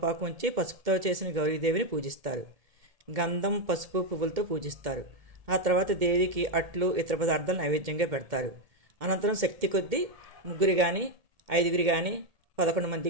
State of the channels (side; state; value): left; late; 2.1 ms